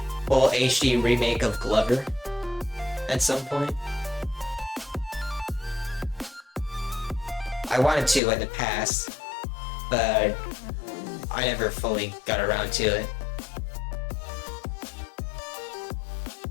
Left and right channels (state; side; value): drops out; right; at 8.2 s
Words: full HD remake of Glover at some point. I wanted to in the past, but I never fully got around to it.